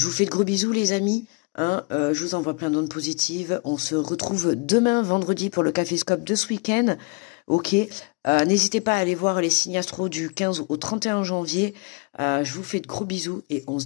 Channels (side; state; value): right; quieter; 30.1 dB